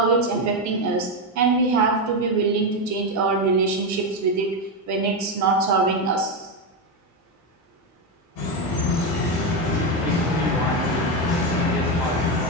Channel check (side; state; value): both; normal; correlation 0.09